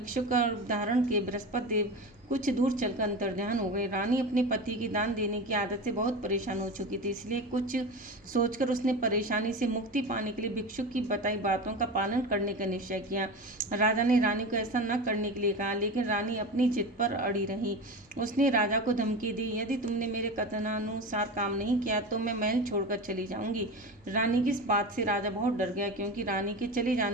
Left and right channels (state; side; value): normal; both; correlation 0.26